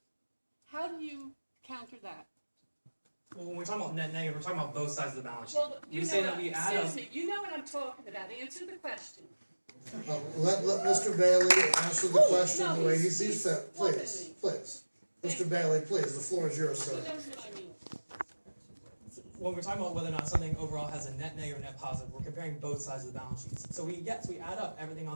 How do you counter that? Well, when we're talking about net negative, we're talking about both sides of the balance sheet. Well, we say that we add up. excuse me, you know what I'm talking about. Answer the question. Let Mr. Bailey answer the question no, the way he he's sees fit. Please, please. Mr. Bailey, please, the floor is yours, He sir. knows what I mean. When we're talking about whether or not something overall has a net negative or net positive, we're comparing both sides of the balance sheets. So we add up everything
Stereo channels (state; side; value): inverted; both; correlation -1.00